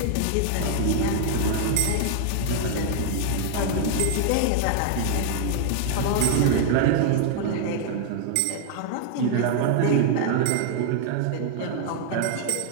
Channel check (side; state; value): both; different; correlation -0.01